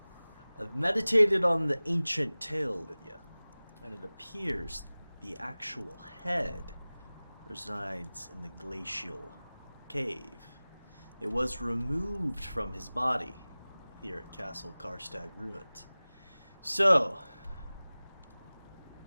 I've meditated on the ancient tale, Lydia, and it appears the actual head resides in the glacial cave. It was removed from his body here at Castle Karstag Ruins. So,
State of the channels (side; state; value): both; inverted; correlation -0.99